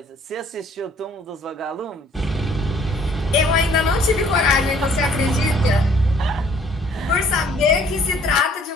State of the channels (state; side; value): normal; both; correlation 0.59